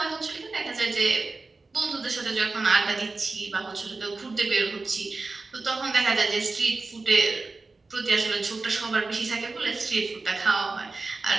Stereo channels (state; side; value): quieter; left; 3.7 dB